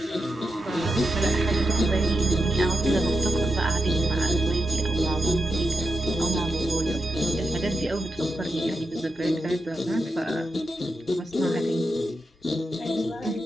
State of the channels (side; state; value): both; normal; correlation 0.86